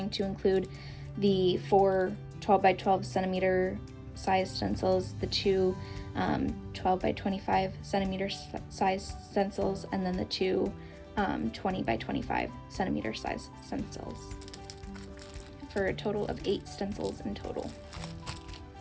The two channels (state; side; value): identical; both; correlation 1.00